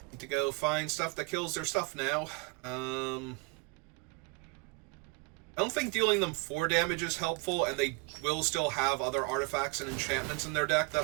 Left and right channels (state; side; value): quieter; left; 30.3 dB